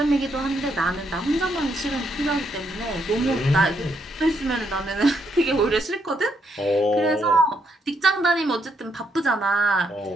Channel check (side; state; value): both; normal; correlation 0.76